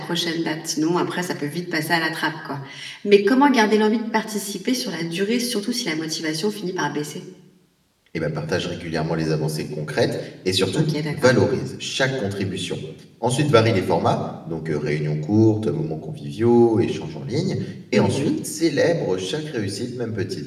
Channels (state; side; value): identical; both; correlation 1.00